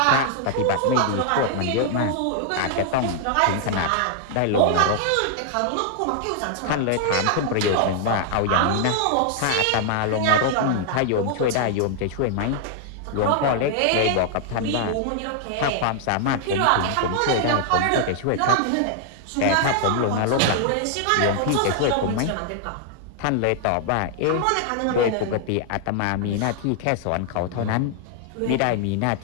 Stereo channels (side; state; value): both; different; correlation 0.00